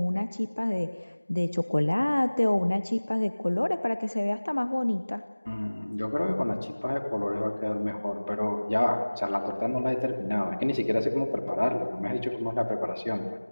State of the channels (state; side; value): inverted; both; correlation -1.00